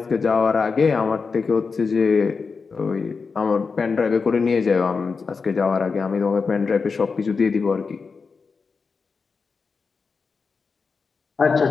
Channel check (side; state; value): right; quieter; 4.9 dB